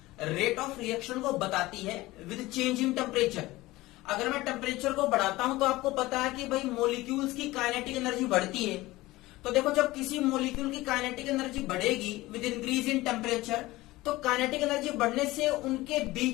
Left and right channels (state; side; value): quieter; right; 18.9 dB